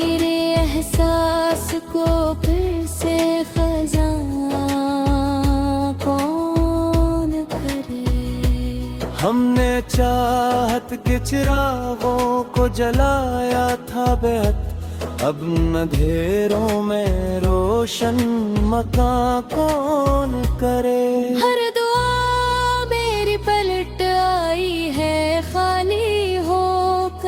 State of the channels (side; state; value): both; identical; correlation 1.00